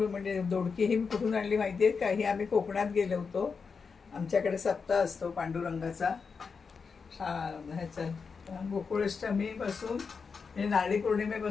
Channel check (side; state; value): right; quieter; 5.3 dB